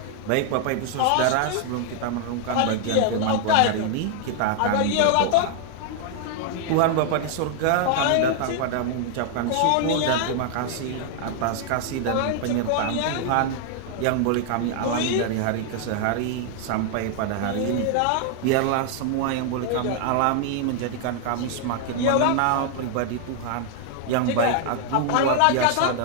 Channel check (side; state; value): both; different; correlation 0.00